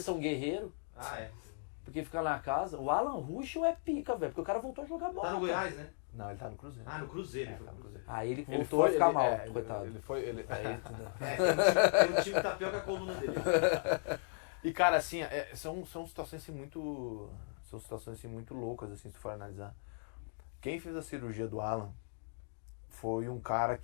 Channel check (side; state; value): right; silent; digital silence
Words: guerreiros, Ah, é. porque fica na casa. O Alan Ruschel é pica, velho, porque o cara voltou a jogar bola. Tá no Goiás, né? Não, ele tá no Cruzeiro. Ah, no Cruzeiro. Tá no Cruzeiro. Aí ele Ele voltou foi, a ficar ele- mal, é, coitado. Ele foi. Aí, Tem um time tapioca com a coluna dele. E cara, assim, são situações assim muito. São situações assim muito loucas, assim, se for analisar. Quem fez a cirurgia do Alan foi um cara